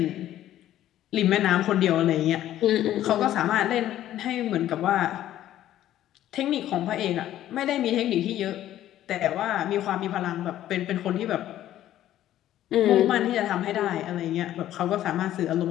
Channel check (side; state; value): right; quieter; 12.7 dB